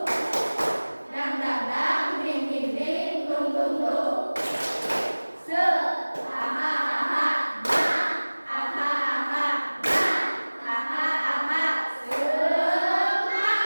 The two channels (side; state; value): both; inverted; correlation -1.00